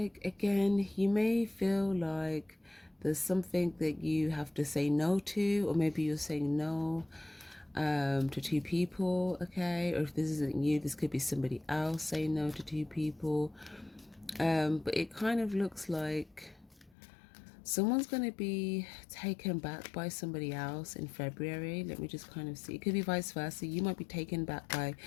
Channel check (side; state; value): right; drops out; at 16.9 s